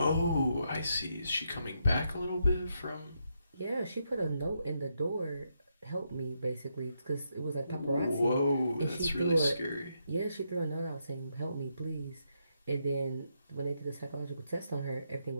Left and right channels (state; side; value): inverted; both; correlation -0.80